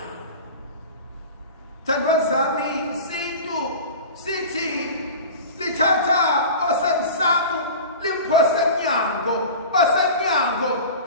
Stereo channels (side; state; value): both; inverted; correlation -0.34